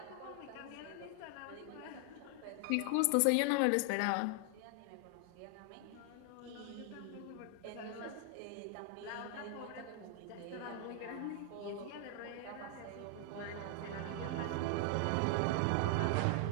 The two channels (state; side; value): different; both; correlation 0.00